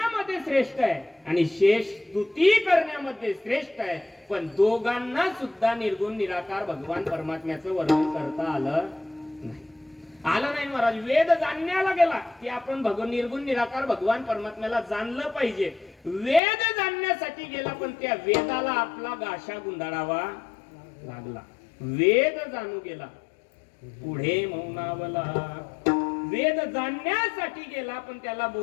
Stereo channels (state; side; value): drops out; right; at 16.4 s